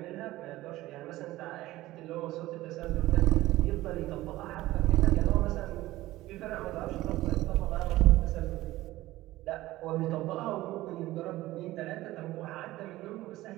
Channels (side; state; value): left; quieter; 17.0 dB